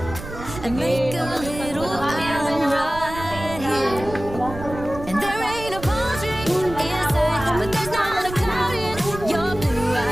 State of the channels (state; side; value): noise; right; rumble, 11 dB below the sound